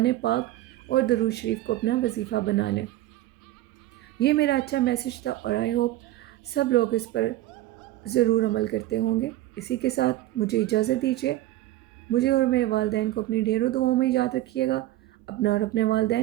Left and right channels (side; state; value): left; quieter; 15.5 dB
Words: پاک اور درود شریف کو اپنا وظیفہ بنا لیں۔ یہ میرا اچھا میسیج تھا، اور آئی ہوپ سب لوگ اس پر ضرور عمل کرتے ہوں گے۔ اسی کے ساتھ مجھے اجازت دیجیے، مجھے اور میرے والدین کو اپنی ڈھیروں دعاؤں میں یاد رکھیے گا، اپنا اور اپنے